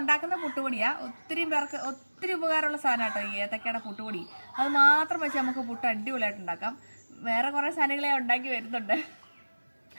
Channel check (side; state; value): both; inverted; correlation -1.00